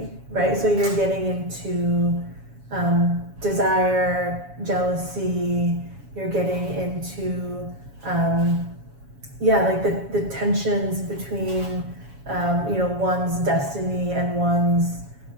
right? So you're getting into desire, jealousy, you're getting into, like the tensions between, one's destiny and one's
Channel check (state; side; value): late; left; 7.2 ms